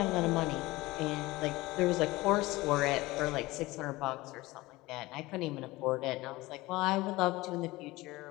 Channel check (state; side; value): quieter; right; 20.0 dB